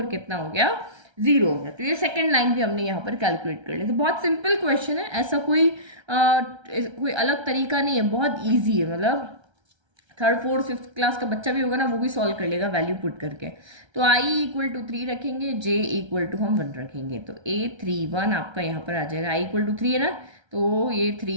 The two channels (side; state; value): left; late; 1.3 ms